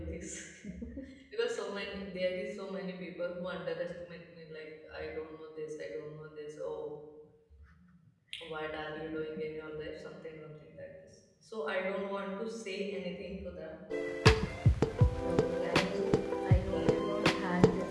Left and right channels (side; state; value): both; identical; correlation 1.00